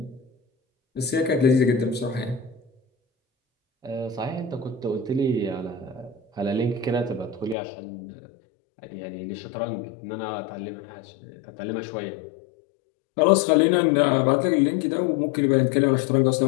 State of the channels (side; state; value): right; drops out; at 7.6 s